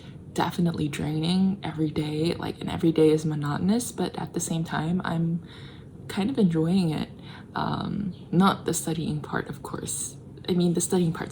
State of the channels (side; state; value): both; identical; correlation 1.00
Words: definitely draining every day, like, and every day is monotonous, but at the same time I'm kind of enjoying it. Not the studying part, of course. I mean, the studying